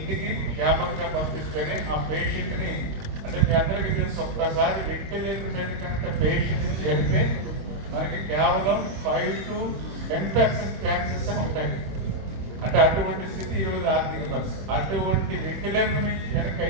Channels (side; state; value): left; late; 26 ms